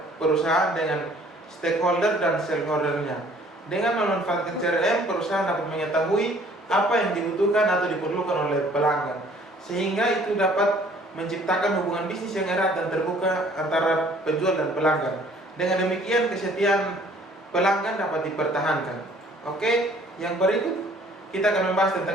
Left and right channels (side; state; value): both; normal; correlation 0.56